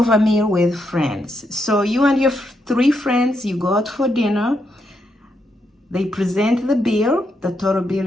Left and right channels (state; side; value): normal; both; correlation 0.80